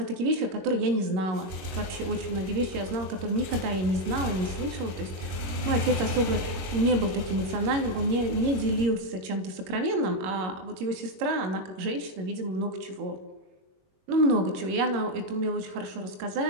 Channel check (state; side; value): late; left; 21 ms